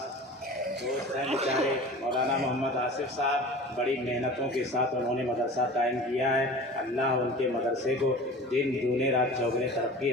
दोस्त हैं बेचारे मौलाना मोहम्मद आसिफ साहब, बड़ी मेहनतों के साथ उन्होंने मदरसा कायम किया है। अल्लाह उनके मदरसे को दिन दूने रात चौगुने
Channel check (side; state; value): both; normal; correlation 0.38